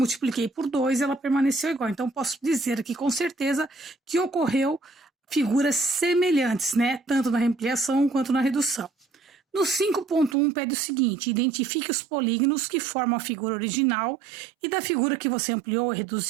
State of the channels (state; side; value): drops out; left; at 10.4 s